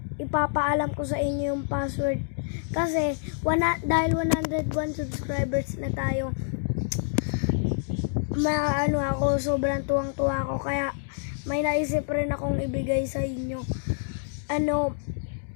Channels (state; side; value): silent; right; digital silence